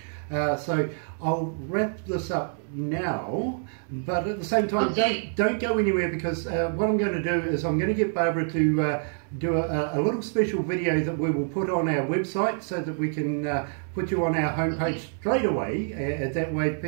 So I'll wrap this up now, but at the same time, don't go anywhere, because what I'm going to do is I'm going to get Barbara to do a little special video that we will put on our website so that we can put you on our homepage straight away. That way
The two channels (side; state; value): left; silent; 60 dB below the other